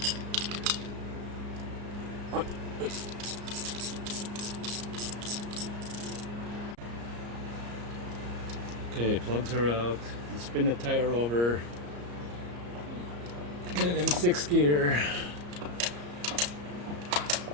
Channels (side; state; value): left; late; 34 ms